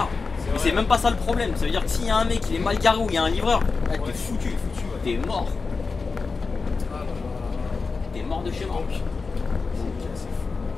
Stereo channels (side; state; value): right; quieter; 4.4 dB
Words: Mais c'est même pas ça le problème. Ça veut dire que s'il y a un mec qui est mal garé ou il y a un livreur, ah, t'es foutu. T'es mort. Ah là là. T'es mort de chez mort. C'est fou.